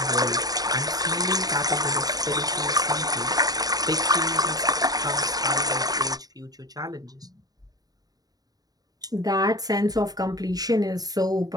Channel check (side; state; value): left; late; 0.18 ms